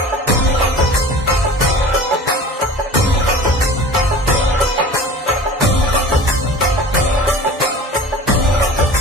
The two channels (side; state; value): both; normal; correlation 0.40